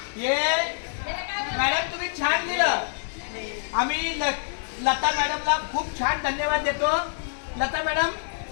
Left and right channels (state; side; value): silent; right; digital silence